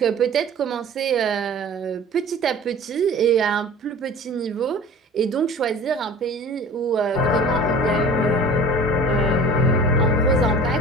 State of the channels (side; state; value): both; normal; correlation 0.42